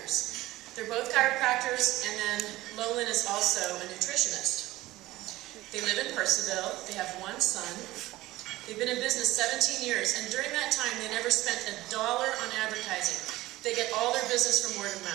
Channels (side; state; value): left; quieter; 17.6 dB